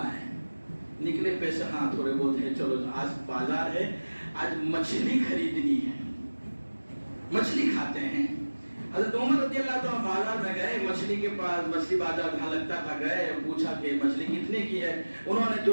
ہے. نکلے پیسے ہاں تھوڑے بہت ہے, چلو آج بازار ہے, آج مچھلی خریدنی ہے, مچھلی کھاتے ہیں. حضرت عمر رضی اللہ تعالیٰ بازار میں گئے, مچھلی کے پاس, مچھلی بازار جہاں لگتا تھا گئے, پوچھا کہ مچھلی کتنے کی ہے. انہوں نے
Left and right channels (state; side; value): inverted; both; correlation -1.00